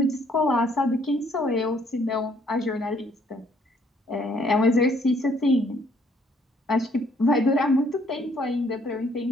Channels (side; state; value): both; normal; correlation 0.65